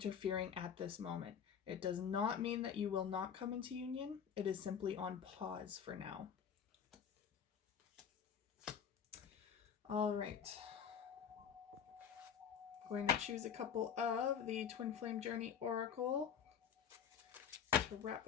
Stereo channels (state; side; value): quieter; right; 7.8 dB